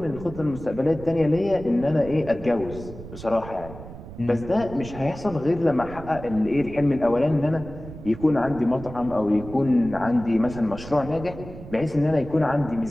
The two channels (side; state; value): right; noise; rumble, 13 dB below the sound